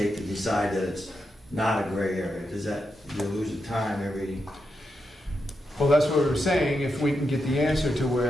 to decide that it's not a gray area? Does that, you lose the time every, Well, that's what we were saying, if we can get the answer to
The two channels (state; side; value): normal; both; correlation 0.85